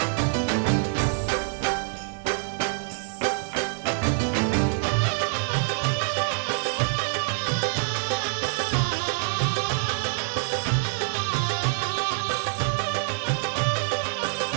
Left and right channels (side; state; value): left; silent; digital silence